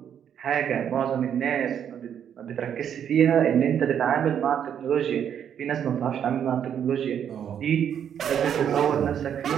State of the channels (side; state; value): left; quieter; 8.8 dB